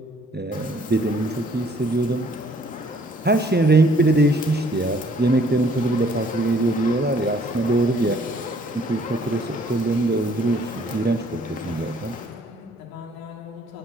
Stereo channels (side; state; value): both; normal; correlation 0.61